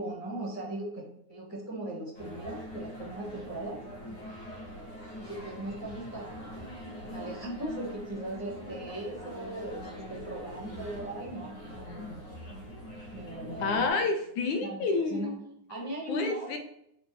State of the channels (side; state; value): right; late; 9.6 ms